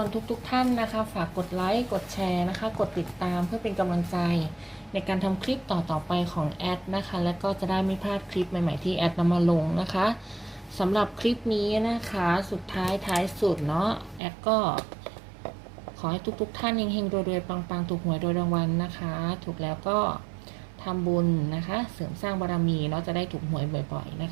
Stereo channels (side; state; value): left; drops out; at 14.2 s